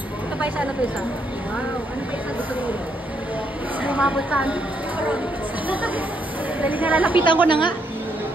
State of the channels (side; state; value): both; normal; correlation 0.75